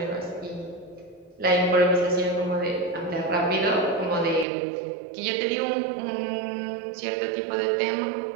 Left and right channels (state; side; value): drops out; left; at 4.5 s